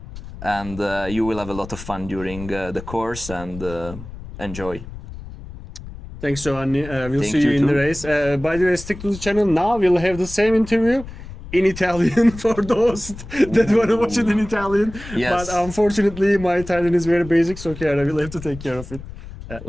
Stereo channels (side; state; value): left; noise; rumble, 13 dB below the sound